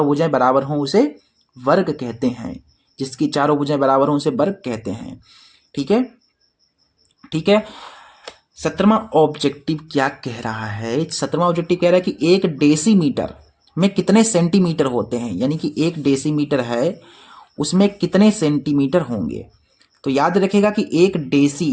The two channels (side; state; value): both; identical; correlation 1.00